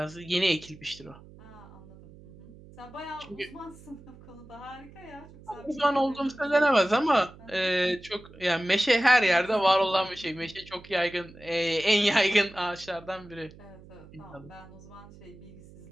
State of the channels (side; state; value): right; noise; hum, 21 dB below the sound